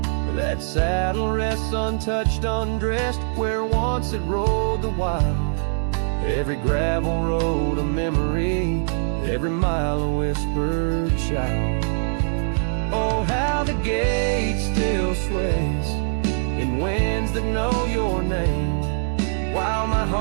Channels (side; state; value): left; silent; digital silence